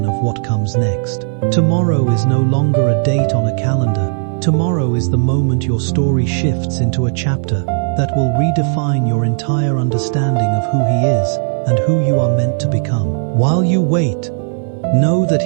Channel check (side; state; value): left; silent; 69 dB below the other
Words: of what comes next. Tomorrow is no longer a date on a calendar. Tomorrow is the moment your story shifts into a chapter that will redefine your entire understanding of who he is and who you are meant to become. While you wait, know that